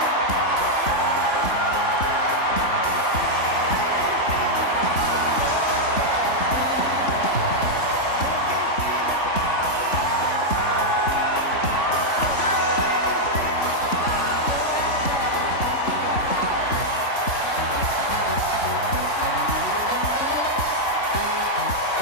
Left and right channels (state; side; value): late; right; 3.5 ms